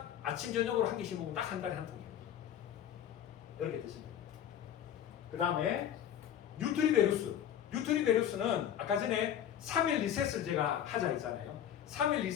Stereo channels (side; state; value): right; quieter; 10.1 dB